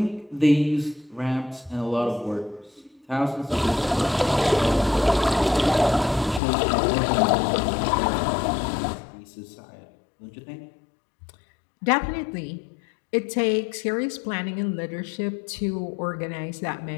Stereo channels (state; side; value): drops out; right; at 6.4 s